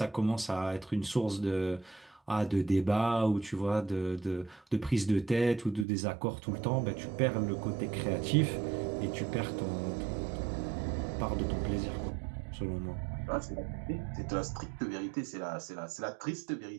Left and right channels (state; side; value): drops out; left; at 5.9 s